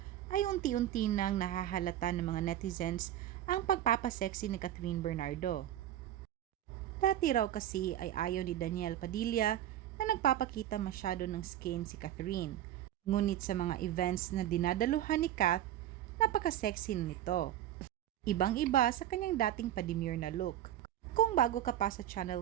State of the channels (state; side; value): quieter; left; 12.0 dB